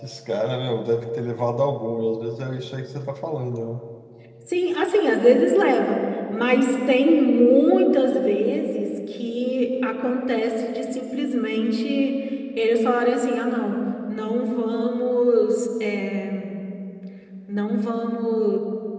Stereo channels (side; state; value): both; identical; correlation 1.00